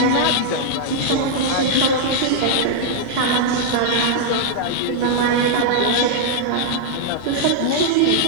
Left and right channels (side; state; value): both; different; correlation -0.01